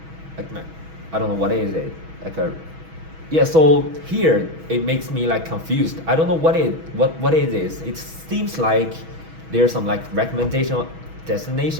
I don't know what is it, yeah. So here it makes me confused. I don't know what it is. It seems like there's some recommendation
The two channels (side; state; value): left; late; 6.2 ms